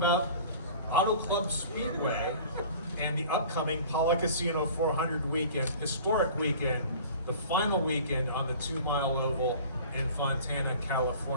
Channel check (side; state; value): both; inverted; correlation -0.43